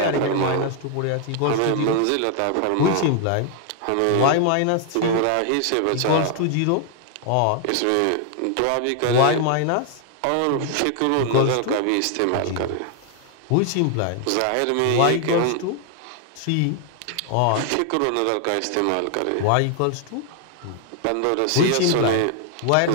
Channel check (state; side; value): different; both; correlation 0.00